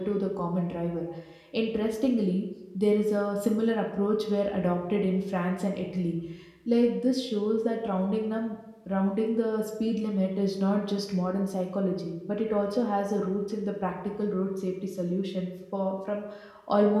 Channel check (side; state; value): both; identical; correlation 1.00